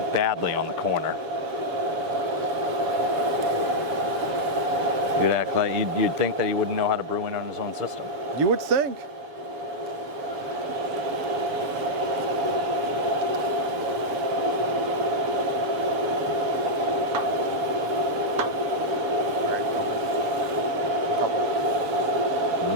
badly on the corner. You'd act like you'd think that he wouldn't know how to brew in on his own system. You would think.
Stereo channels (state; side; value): late; left; 7.0 ms